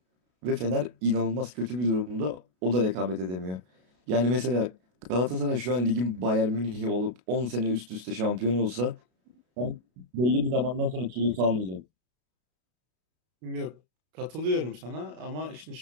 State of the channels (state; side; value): late; left; 33 ms